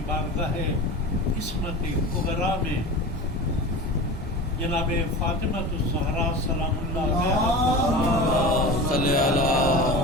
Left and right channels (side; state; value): both; normal; correlation 0.31